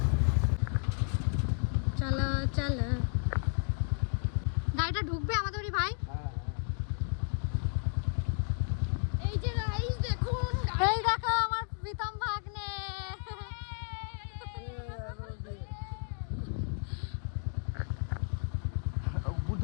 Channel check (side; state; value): right; silent; 56 dB below the other